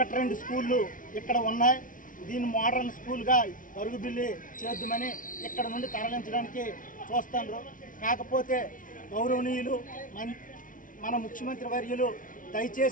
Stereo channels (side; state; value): right; late; 0.38 ms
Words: స్కూళ్ళు ఇక్కడ ఉన్నాయి. దీన్ని మోడర్న్ స్కూల్గా గరుగుబిల్లి చేద్దామని ఇక్కడ నుండి తరలించడానికి చూస్తున్నారు. కాకపోతే గౌరవనీయులు మన ముఖ్యమంత్రి వర్యులు